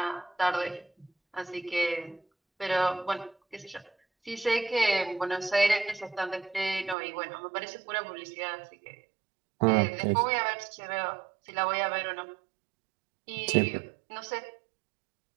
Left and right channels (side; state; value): left; drops out; at 7.0 s